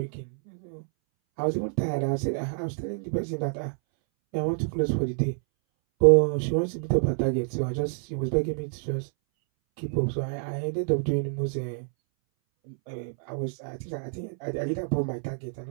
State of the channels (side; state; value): left; silent; 60 dB below the other